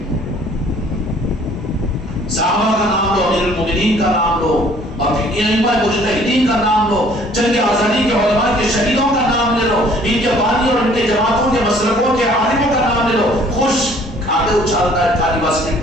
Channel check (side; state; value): both; normal; correlation 0.57